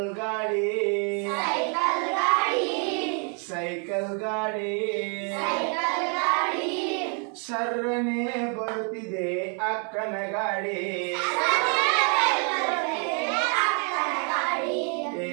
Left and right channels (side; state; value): left; quieter; 39.8 dB